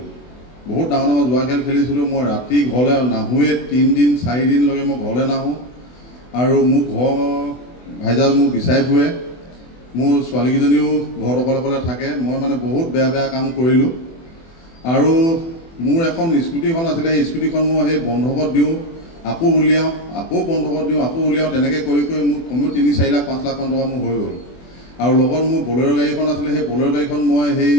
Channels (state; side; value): late; right; 24 ms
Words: মই ৰাতি ঘৰলৈ নাহোঁৱে, 3 দিন 4 দিনলৈকে মই ঘৰলৈ নাহোঁ। আৰু মোৰ ঘৰ ভাইজাল মোক বিচাৰি ফুৰে, মোৰ ছোৱালীকেইজনীও ঘৰত অকলে থাকে। মই মানে বহুত বেয়া কাম কৰিলোঁ। আৰু মোৰ এখন স্কুটিখন আছিলে, সেই স্কুটিখন মই সেই বন্ধকত দিওঁ, আকৌ উলিয়াওঁ, আকৌ বন্ধকত দিওঁ, আকৌ উলিয়াওঁ, তেনেকৈ কৰি মোৰ কমেও 3-4 লাখ 5 লাখ মান টকা মোৰ হৈ গ'ল। আৰু লগত মোৰ বলেৰ' গাড়ীখন আছিলে, সেই বলেৰ' গাড়ীখন মই সেই